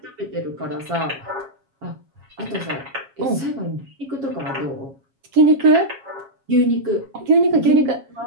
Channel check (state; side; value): late; left; 7.3 ms